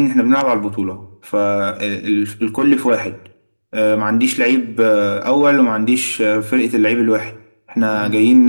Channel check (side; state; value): both; inverted; correlation -1.00